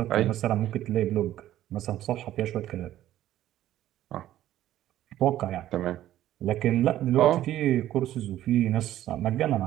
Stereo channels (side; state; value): left; quieter; 13.1 dB